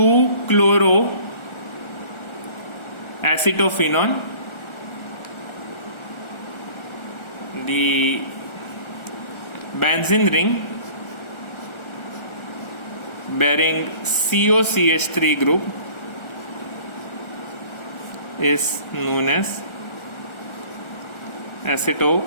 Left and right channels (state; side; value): late; right; 1.4 ms